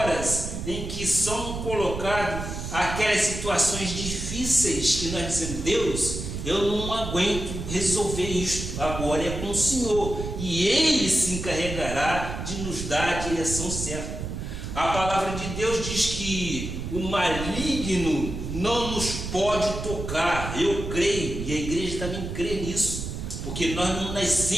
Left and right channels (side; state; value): right; noise; rumble, 6 dB below the sound